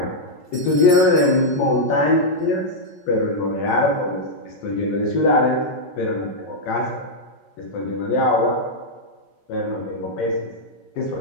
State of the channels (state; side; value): late; right; 5.3 ms